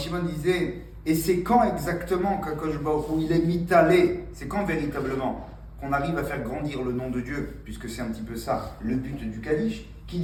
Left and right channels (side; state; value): both; identical; correlation 1.00